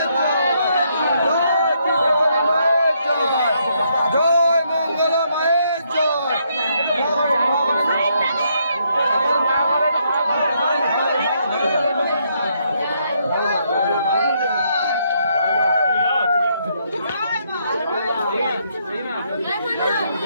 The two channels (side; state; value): both; inverted; correlation -0.74